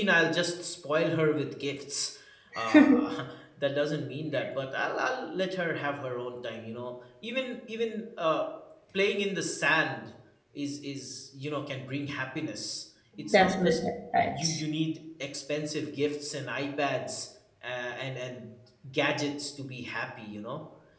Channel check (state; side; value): identical; both; correlation 1.00